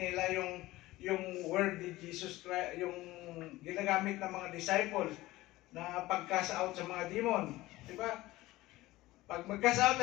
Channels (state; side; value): quieter; right; 18.0 dB